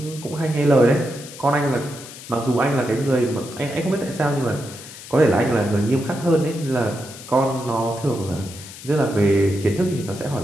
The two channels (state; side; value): noise; left; hiss, 15 dB below the sound